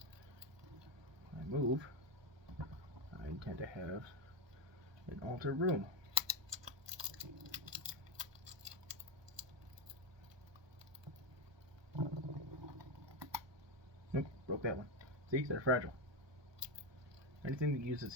When I move, I intend to have an altar room. Nope, broke that one. See, they're fragile. Anything that uses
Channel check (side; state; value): left; late; 1.2 ms